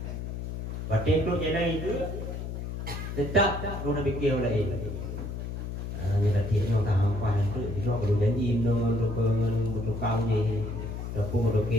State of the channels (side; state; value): left; noise; hum, 5 dB below the sound